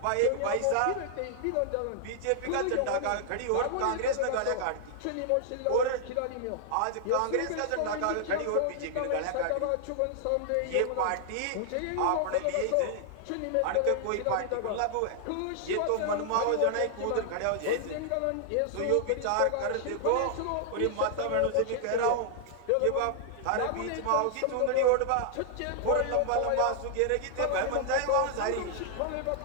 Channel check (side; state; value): both; different; correlation -0.01